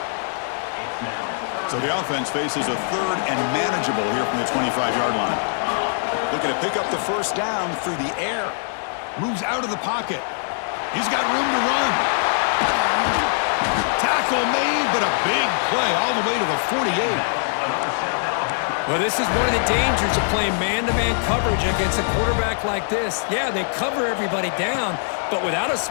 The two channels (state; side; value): silent; right; 64 dB below the other